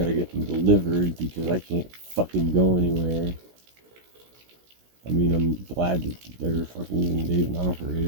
get them delivered because I can't fucking go anywhere. I mean, I'm glad that they're fucking, they even offer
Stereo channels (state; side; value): late; left; 16 ms